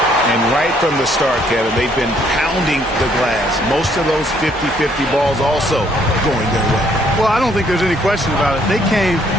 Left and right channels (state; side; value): normal; both; correlation 0.66